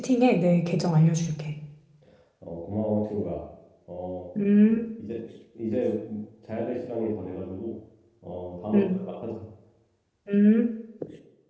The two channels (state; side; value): identical; both; correlation 1.00